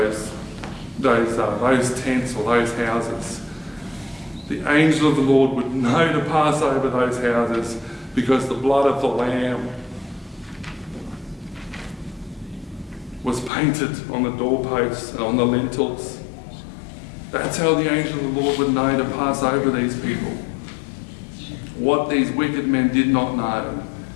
tents or those houses? The angel of the Lord would know to pass over those houses because the blood of the Lamb was painted on the doorposts and on the lintels. That's how the angel of the Lord would know to pass over these people. What these wicked men did not know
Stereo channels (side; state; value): right; drops out; at 13.5 s